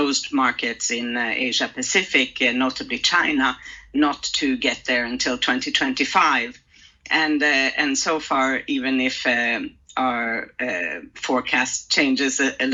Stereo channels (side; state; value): both; identical; correlation 1.00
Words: markets in Asia Pacific, notably China, not to get there until 2025. And so far, even if our forecast changes a